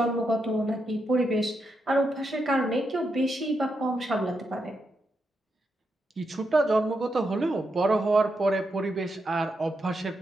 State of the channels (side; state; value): both; normal; correlation 0.83